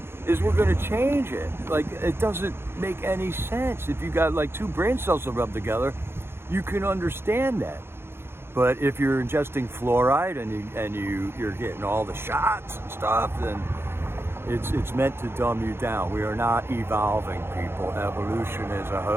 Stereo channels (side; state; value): left; late; 0.11 ms